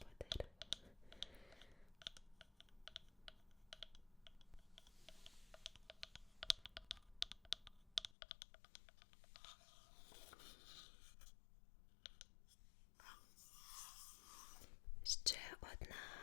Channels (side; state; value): right; drops out; at 8.2 s